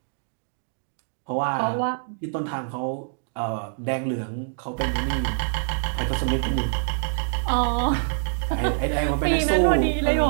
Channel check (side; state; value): left; silent; digital silence